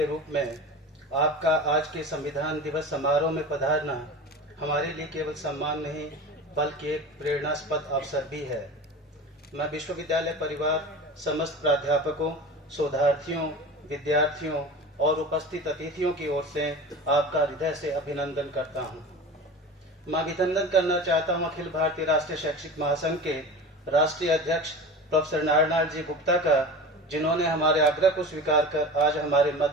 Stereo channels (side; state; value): both; normal; correlation 0.33